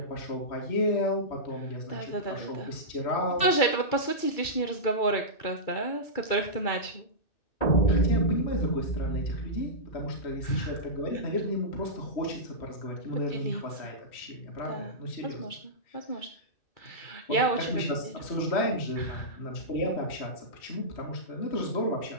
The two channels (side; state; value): right; late; 2.3 ms